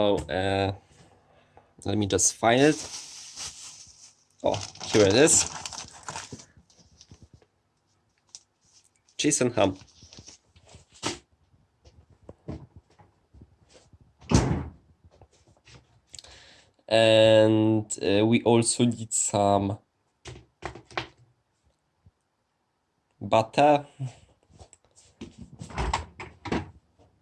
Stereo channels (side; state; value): both; identical; correlation 1.00